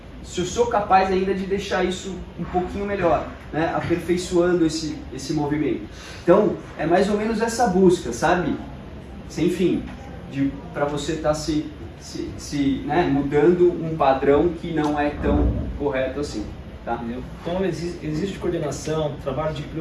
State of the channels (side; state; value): both; identical; correlation 1.00